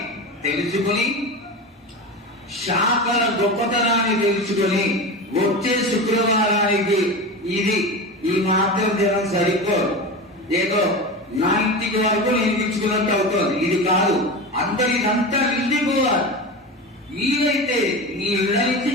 తెలుసుకుని, శాఖల గొప్పతనాన్ని తెలుసుకుని వచ్చే శుక్రవారానికి ఇది ఈ మాత్రం జనం సరిపోదు. ఏదో నా ఇంటికి వరకు నేను ఇచ్చుకున్నట్టు అవుతుంది. ఇది కాదు, అందరిదంతా నిండిపోవాలి. వీలైతే మీ ఇళ్ళ నుంచి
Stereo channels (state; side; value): normal; both; correlation 0.26